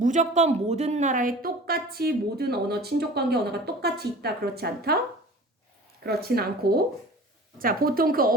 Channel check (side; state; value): both; normal; correlation 0.41